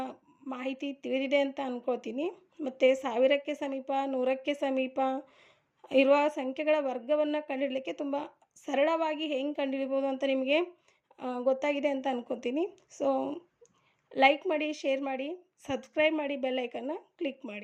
ಮಾಹಿತಿ ತಿಳಿದಿದೆ ಅಂತ ಅಂದ್ಕೊಳ್ತೀನಿ. ಮತ್ತು 1000ಕ್ಕೆ ಸಮೀಪ, 100ಕ್ಕೆ ಸಮೀಪ ಇರುವ ಸಂಖ್ಯೆಗಳ ವರ್ಗವನ್ನು ಕಂಡುಹಿಡಲಿಕ್ಕೆ ತುಂಬ ಸರಳವಾಗಿ ಹೆಂಗೆ ಕಂಡುಹಿಡಿಬೋದು ಅಂತ ನಿಮಗೆ ಗೊತ್ತಾಗಿದೆ ಅಂತ ಅಂದ್ಕೊತೀನಿ. ಸೊ ಲೈಕ್ ಮಾಡಿ, ಶೇರ್ ಮಾಡಿ, ಸಬ್ಸ್ಕ್ರೈಬ್ ಮಾಡಿ, ಬೆಲ್ ಐಕನ್ನ ಕ್ಲಿಕ್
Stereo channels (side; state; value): both; identical; correlation 1.00